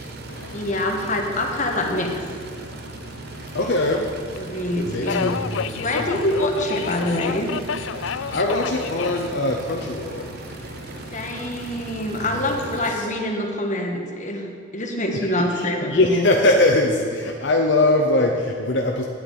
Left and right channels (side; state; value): both; normal; correlation 0.11